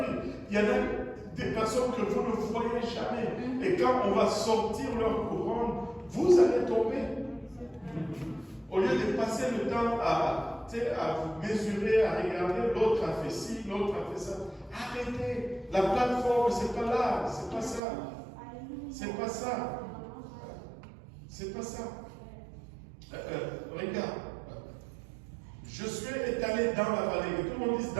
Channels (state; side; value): drops out; left; at 17.8 s